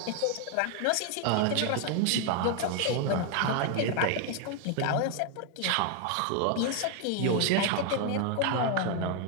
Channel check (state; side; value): different; both; correlation 0.01